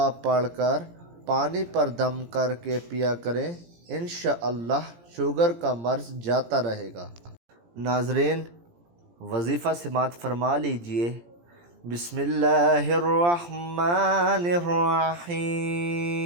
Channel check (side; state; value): left; late; 17 ms